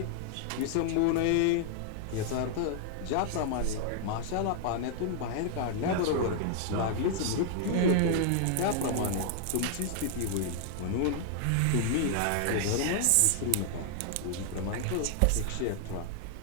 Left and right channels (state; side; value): different; both; correlation -0.01